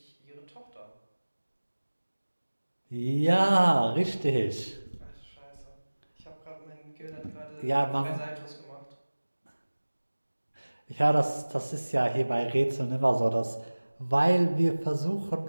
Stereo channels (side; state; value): both; inverted; correlation -1.00